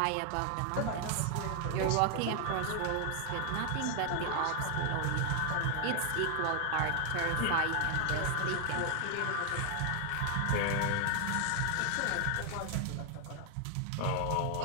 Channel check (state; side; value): different; both; correlation 0.00